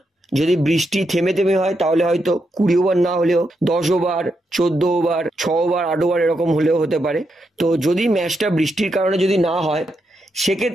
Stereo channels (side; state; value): both; normal; correlation 0.83